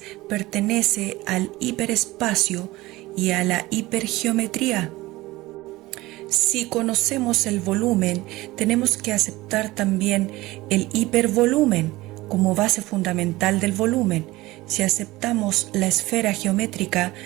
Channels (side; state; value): left; quieter; 19.3 dB